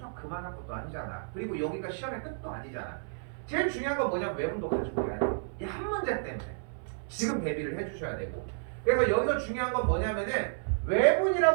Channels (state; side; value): silent; left; 57 dB below the other